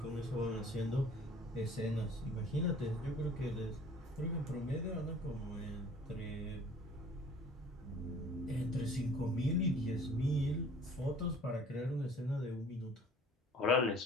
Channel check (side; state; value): both; normal; correlation 0.50